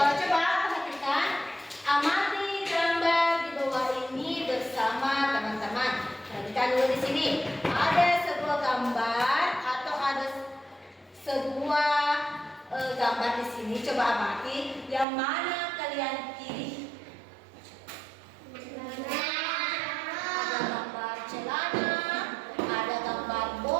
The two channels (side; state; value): left; drops out; at 15.1 s